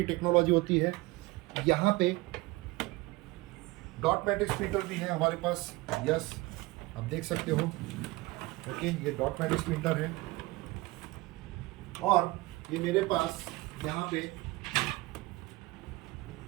टेक्नोलॉजी होती है। यहाँ पे डॉट मैट्रिक्स प्रिंटर भी है हमारे पास। यस, आप देख सकते हो। ओके, ये डॉट मैट्रिक्स प्रिंटर है। और ये मेरे पास यहाँ पे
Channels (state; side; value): quieter; left; 21.1 dB